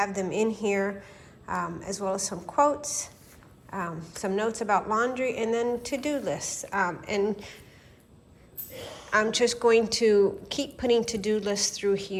them in here, as well as some quotes, some notes about laundry, and then to-do lists. And I'm just going to keep putting to-do lists through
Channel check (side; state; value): both; identical; correlation 1.00